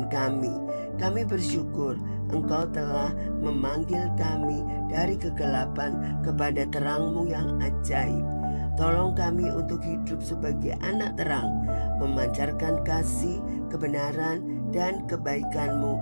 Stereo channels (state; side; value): inverted; both; correlation -1.00